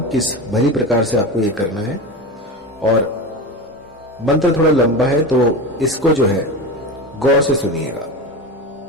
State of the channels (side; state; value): both; normal; correlation 0.25